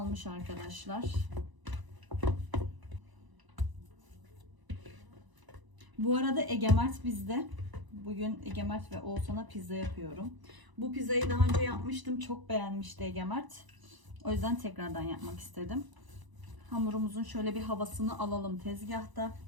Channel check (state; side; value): late; left; 1.0 ms